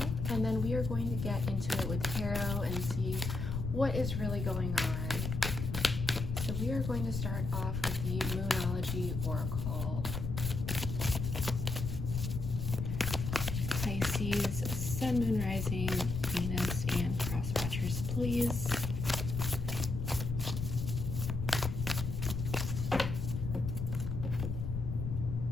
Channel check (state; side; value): noise; left; rumble, 3 dB below the sound